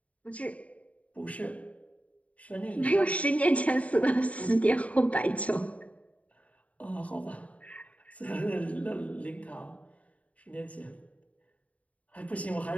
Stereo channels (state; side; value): late; right; 0.067 ms